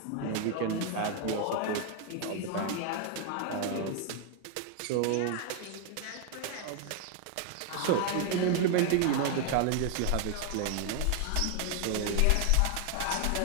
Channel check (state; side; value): different; both; correlation 0.00